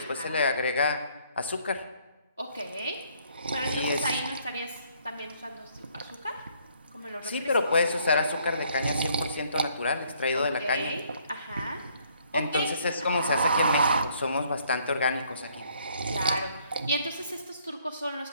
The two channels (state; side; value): inverted; both; correlation -0.65